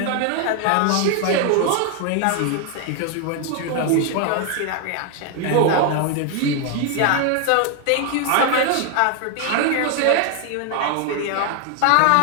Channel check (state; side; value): different; both; correlation 0.01